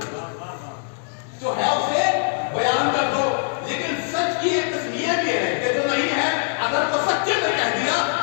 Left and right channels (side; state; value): right; silent; 64 dB below the other